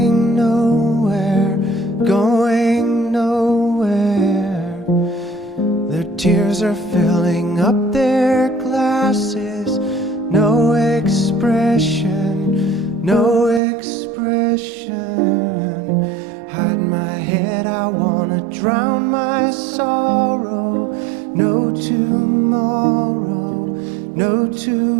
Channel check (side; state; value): left; drops out; at 13.6 s